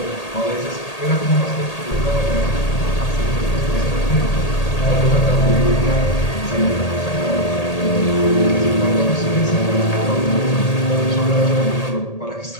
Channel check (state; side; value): late; right; 1.8 ms